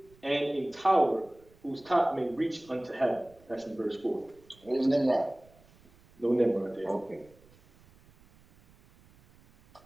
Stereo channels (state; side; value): noise; right; rumble, 28 dB below the sound